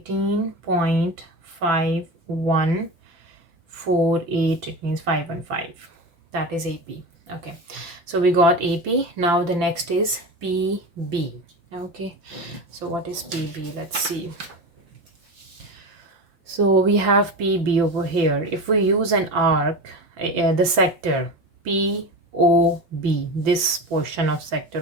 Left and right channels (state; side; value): late; left; 5.9 ms